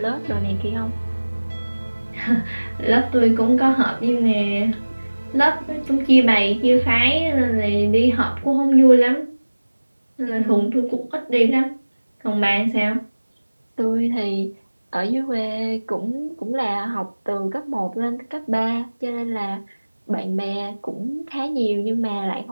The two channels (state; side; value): inverted; both; correlation -1.00